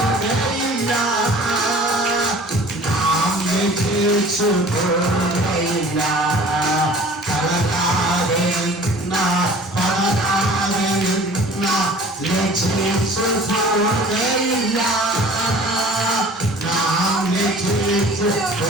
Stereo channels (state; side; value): normal; both; correlation 0.47